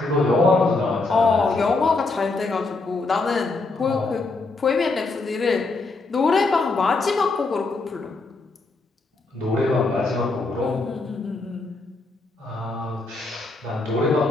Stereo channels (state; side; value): quieter; right; 3.6 dB